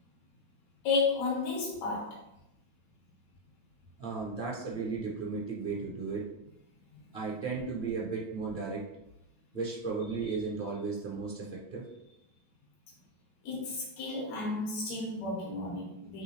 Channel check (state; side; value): late; right; 9.0 ms